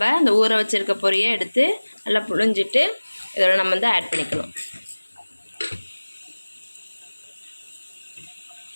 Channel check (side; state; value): both; inverted; correlation -1.00